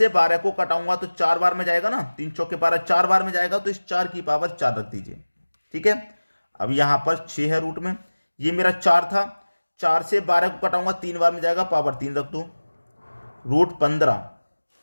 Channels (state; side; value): inverted; both; correlation -1.00